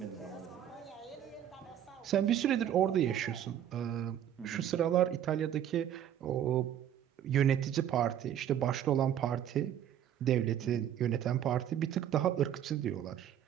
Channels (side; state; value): left; quieter; 10.4 dB